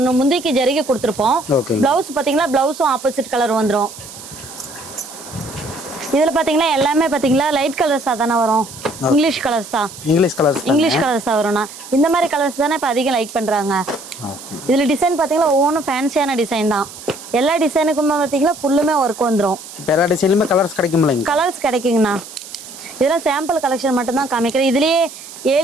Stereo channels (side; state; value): right; noise; hiss, 15 dB below the sound